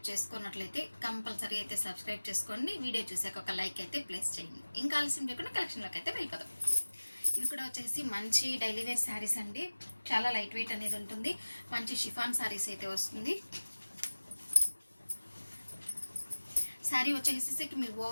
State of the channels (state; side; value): inverted; both; correlation -1.00